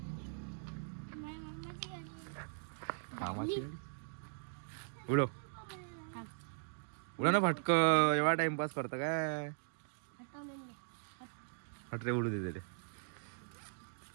मामाची गाडी उडव उडव ना फटक. एवढा टाइमपास करता काय? हट रे उडू दे रे.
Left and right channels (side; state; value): left; silent; digital silence